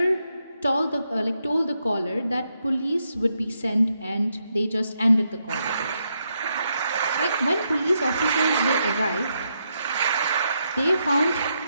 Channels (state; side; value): inverted; both; correlation -0.80